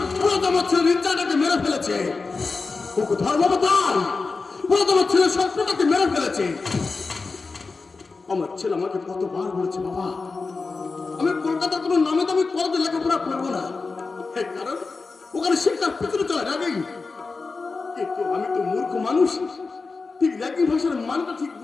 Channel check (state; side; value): quieter; right; 4.2 dB